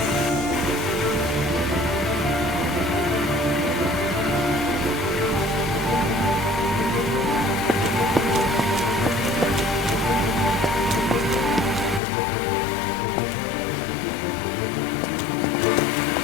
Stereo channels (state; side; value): drops out; right; at 12.0 s